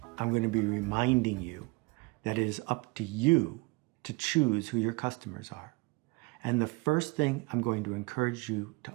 I'm going to be reminding you that it is up to you to choose who your customers are. And the first thing I'm going to encourage you to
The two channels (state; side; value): quieter; left; 26.7 dB